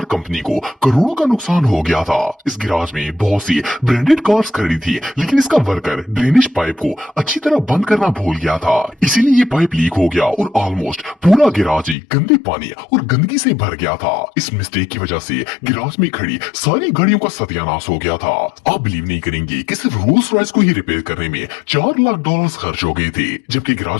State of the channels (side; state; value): right; drops out; at 12.0 s